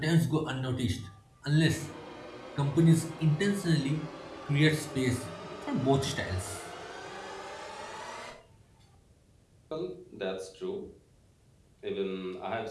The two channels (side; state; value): both; identical; correlation 1.00